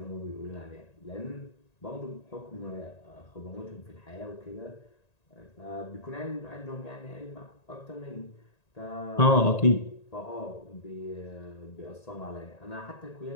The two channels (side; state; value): right; late; 1.9 ms